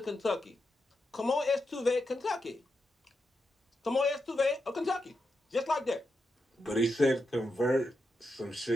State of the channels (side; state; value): both; normal; correlation 0.86